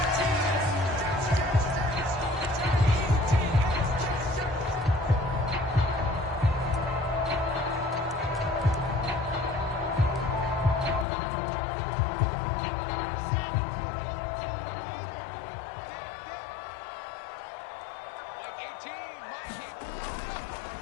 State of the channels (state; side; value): drops out; right; at 11.1 s